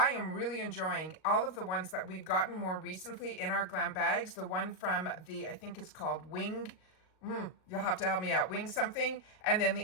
am really enjoying all of the ones that we've gotten more recently in our Glam Bags. The one from the, I think it's called Wing, you'll have to help me out, Wing something. And then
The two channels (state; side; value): late; right; 38 ms